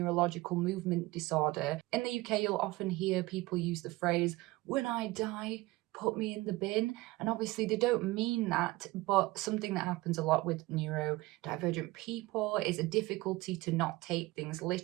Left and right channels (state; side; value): quieter; left; 20.0 dB